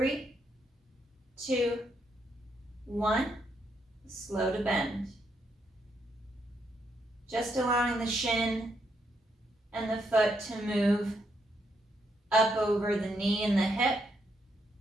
2, 1, slow to bend. Just allowing the shin and the foot to move up over the knee and the hip.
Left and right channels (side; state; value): both; normal; correlation 0.77